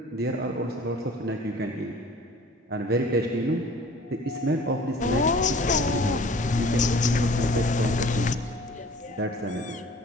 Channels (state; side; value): normal; both; correlation 0.48